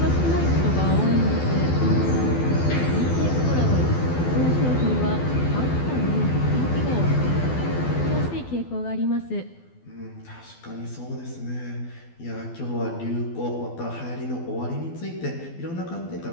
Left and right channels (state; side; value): late; right; 12 ms